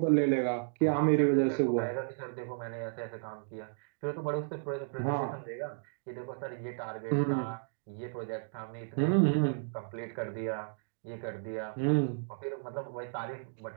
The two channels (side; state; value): left; silent; digital silence